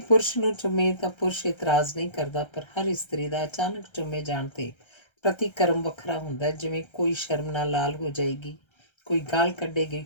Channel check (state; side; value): late; right; 1.3 ms